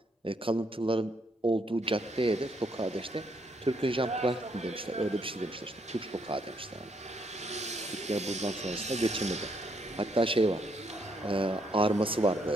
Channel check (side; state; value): both; normal; correlation 0.73